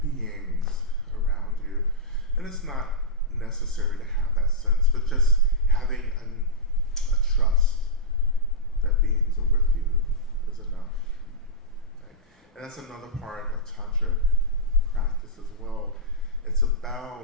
beings around you. And it's not necessary to have that sense, but just having a trust that beings are with you is enough. Right? And that's another part of Tantric practice as well. It's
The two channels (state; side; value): normal; both; correlation -0.10